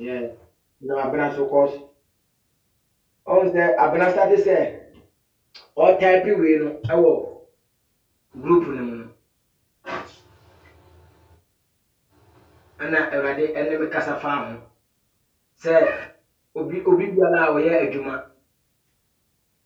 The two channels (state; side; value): identical; both; correlation 1.00